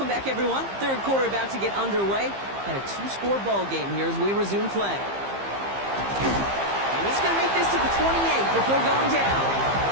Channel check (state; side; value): late; left; 15 ms